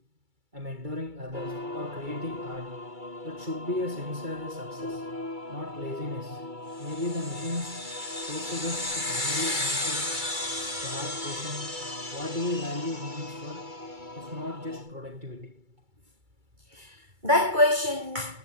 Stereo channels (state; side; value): late; left; 2.3 ms